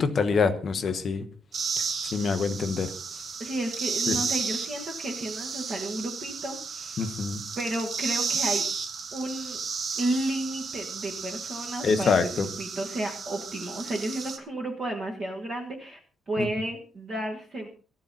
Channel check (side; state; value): both; normal; correlation 0.78